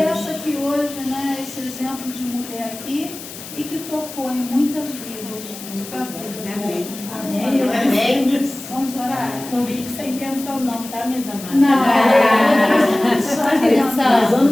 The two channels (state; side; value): noise; left; hiss, 13 dB below the sound